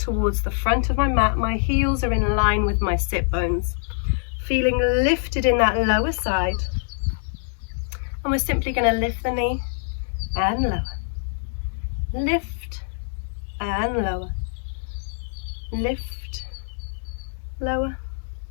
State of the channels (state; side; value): silent; right; digital silence